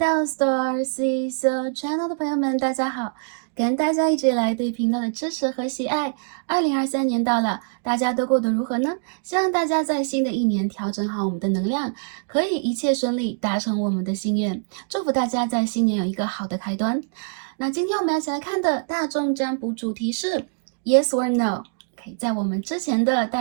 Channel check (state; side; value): silent; left; 62 dB below the other